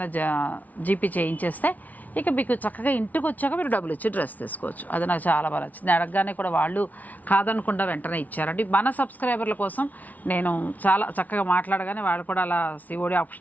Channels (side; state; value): right; late; 0.075 ms